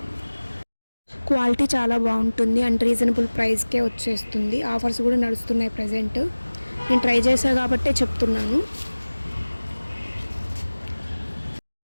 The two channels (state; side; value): inverted; both; correlation -1.00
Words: క్వాలిటీ చాలా బాగుంటుంది అండ్ రీజనబుల్ ప్రైస్కే వచ్చేస్తుంది. ఆఫర్స్ కూడా నడుస్తున్నాయి ప్రజెంట్. నేను ట్రై చేశా కాబట్టే చెప్తున్నాను.